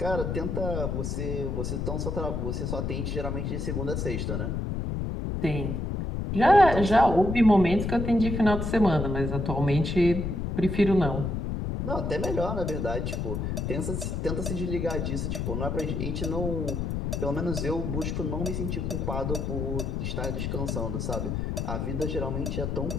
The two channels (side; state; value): left; noise; rumble, 2 dB below the sound